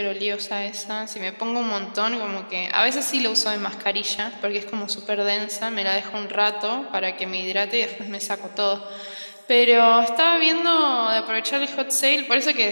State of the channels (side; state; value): both; inverted; correlation -1.00